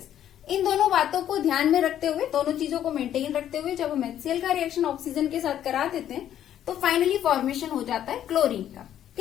इन दोनों बातों को ध्यान में रखते हुए, दोनों चीजों को मेंटेन रखते हुए जब हम HCl का रिएक्शन ऑक्सीजन के साथ करा देते हैं तो फाइनली फॉर्मेशन हो जाता है क्लोरीन का।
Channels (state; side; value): quieter; right; 10.9 dB